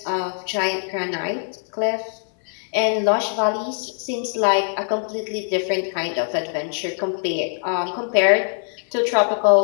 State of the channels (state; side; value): silent; right; digital silence